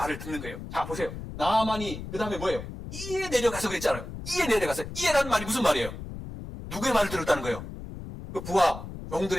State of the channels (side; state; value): left; noise; rumble, 10 dB below the sound